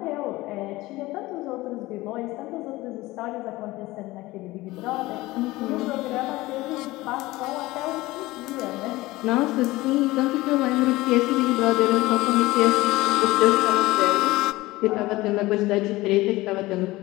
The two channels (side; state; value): right; quieter; 19.3 dB